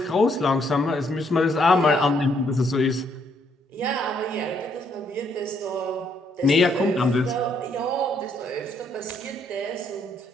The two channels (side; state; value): both; normal; correlation 0.71